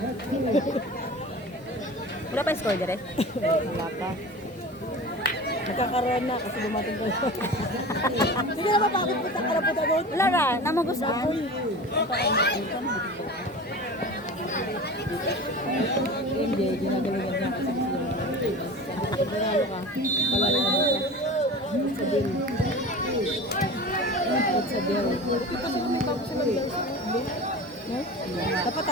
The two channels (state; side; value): normal; both; correlation 0.34